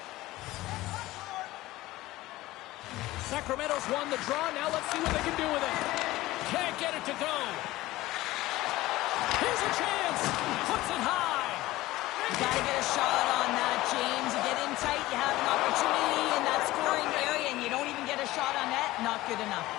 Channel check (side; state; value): right; quieter; 17.6 dB